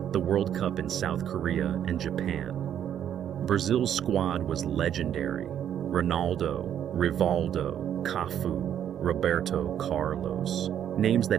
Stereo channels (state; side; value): quieter; left; 9.8 dB